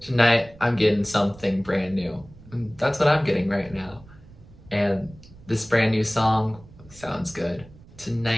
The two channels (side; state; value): right; noise; rumble, 22 dB below the sound